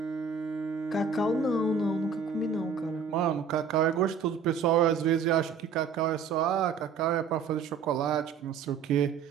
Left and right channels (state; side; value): quieter; left; 6.1 dB